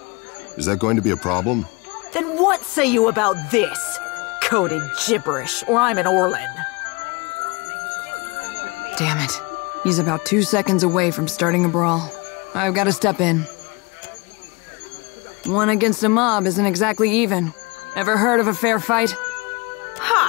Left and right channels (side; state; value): right; quieter; 27.7 dB